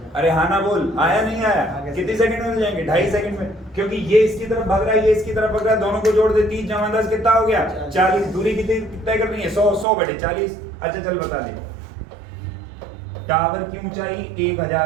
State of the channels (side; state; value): left; drops out; at 9.9 s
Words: अरे हाँ ना बोल, आया नहीं आया? कितनी सेकंड में हो जाएंगे? 2.5 सेकंड में, क्योंकि ये इसकी तरफ भाग रहा है, ये इसकी तरफ भाग रहा है, दोनों को जोड़ दे। 30 जमा 10 कितना हो गया? 40। दूरी कितनी तय करनी है? 100/40। अच्छा चल बता दे। टावर की ऊंचाई